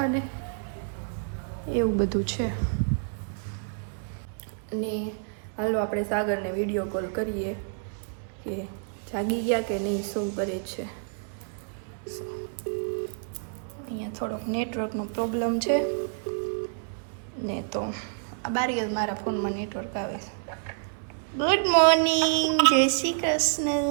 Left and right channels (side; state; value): left; silent; digital silence